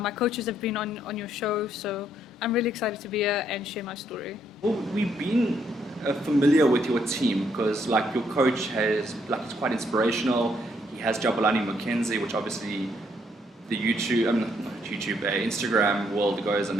coaches have been on your show, so I'm really excited to be here and share my story. Well, we've been familiar with your team because, like, your coach it's quite inspirational. He has Jabulani Mackenzie, which obviously the Instagram world goes, and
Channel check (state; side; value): normal; both; correlation 0.72